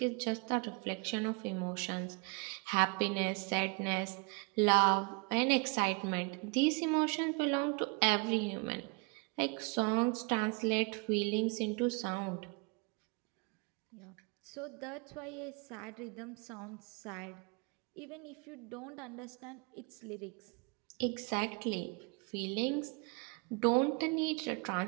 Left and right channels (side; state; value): left; quieter; 31.8 dB